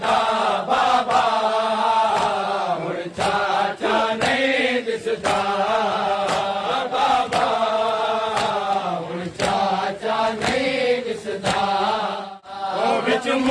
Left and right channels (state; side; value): identical; both; correlation 1.00